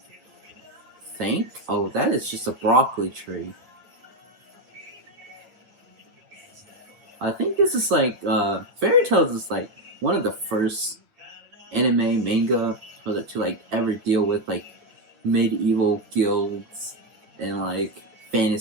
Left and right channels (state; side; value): late; left; 9.6 ms